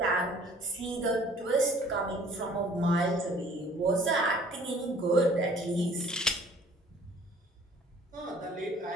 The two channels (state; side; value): normal; both; correlation 0.53